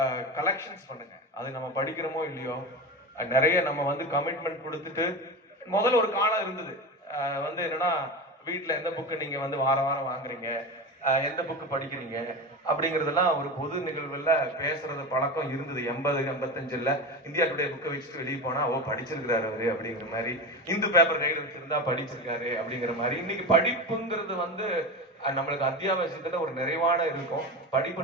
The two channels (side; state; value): both; normal; correlation 0.24